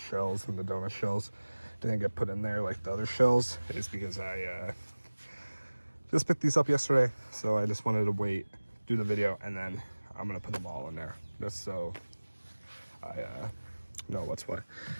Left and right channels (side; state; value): both; inverted; correlation -1.00